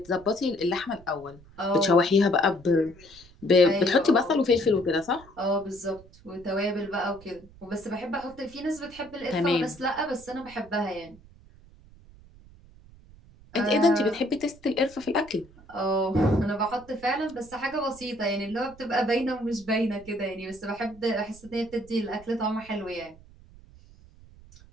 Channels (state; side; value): noise; right; rumble, 23 dB below the sound